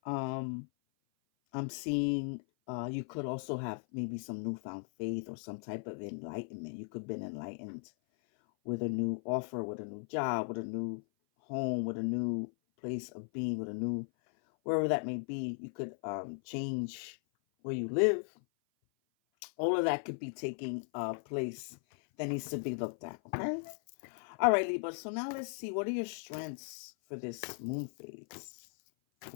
um, I'm seeing you could also have maybe some newfound faith or some type of enlightenment. You could have been enlightened with a new offer, with a new job, with a new home, with a new place of being, with a new, wherever that may be. You could change where you live. All of that could be taking place that needs to be looked at. Okay. All right, Libra. So now let's see, what are your strengths for this moon phase?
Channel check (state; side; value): silent; right; 53 dB below the other